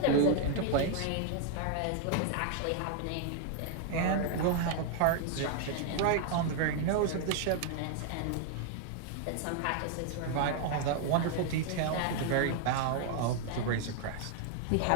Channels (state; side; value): different; both; correlation 0.00